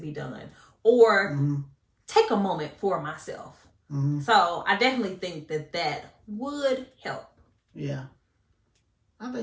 done, or take a moment for myself. So I definitely think that would help. Yeah, I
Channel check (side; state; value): both; identical; correlation 1.00